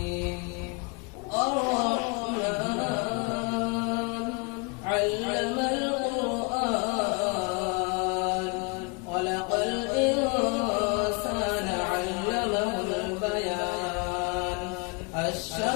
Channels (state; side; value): quieter; right; 31.4 dB